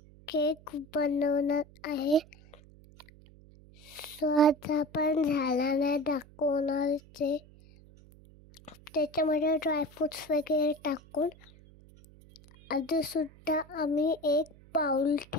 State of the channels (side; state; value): right; noise; hum, 24 dB below the sound